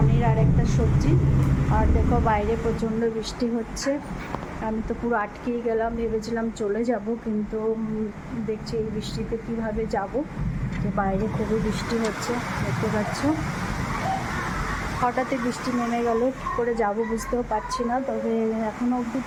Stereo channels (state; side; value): identical; both; correlation 1.00